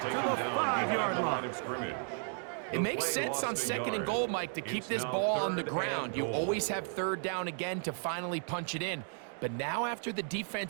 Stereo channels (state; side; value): silent; left; 55 dB below the other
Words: to the 5-yard line. It makes sense on 2nd and goal, Mike, to keep this ball on the ground. You always have 3rd down again to finally punch it in. But now after the